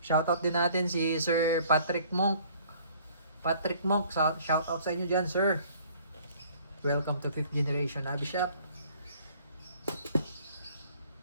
Shoutout din natin si Sir Patrick Monk. Patrick Monk, shoutout sa inyo dyan, sir. Welcome to 5th generation hobby shop.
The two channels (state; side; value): inverted; both; correlation -0.56